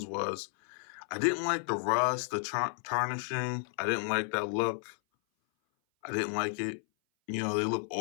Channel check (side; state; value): right; silent; 56 dB below the other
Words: was I didn't like the rust, the tarnishing. I didn't like that look. I didn't like it. You know, they look